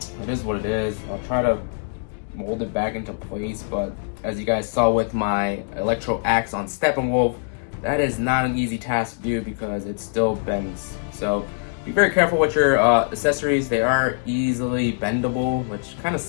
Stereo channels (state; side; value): silent; right; digital silence